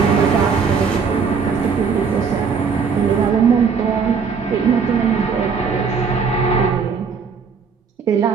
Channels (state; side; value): quieter; left; 5.8 dB